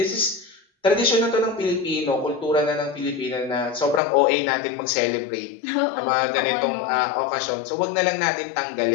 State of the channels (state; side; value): drops out; right; at 4.0 s